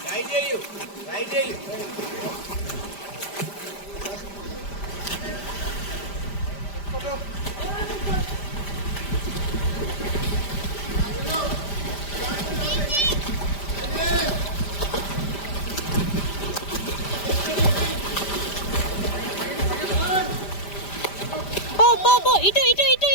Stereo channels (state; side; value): late; right; 5.0 ms